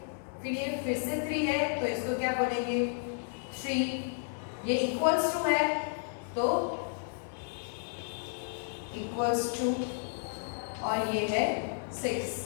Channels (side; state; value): right; silent; digital silence